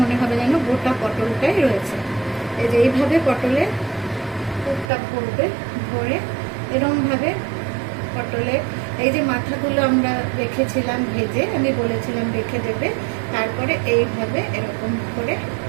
হবে যেন গোটা পটলটাই রয়েছে। এই যে এইভাবে পটলের পুরটা ভরবে, ভরে এরকম ভাবে পটলে এই যে মাথাগুলো আমরা রেখেছিলাম ভেজে, আমি বলেছিলাম রেখে দেবে, তারপরে এইভাবে এরকম করে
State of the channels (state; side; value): drops out; left; at 4.9 s